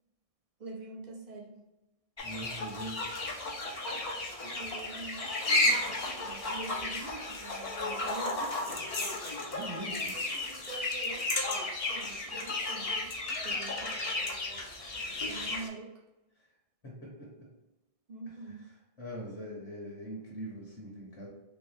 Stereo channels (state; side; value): late; left; 1.6 ms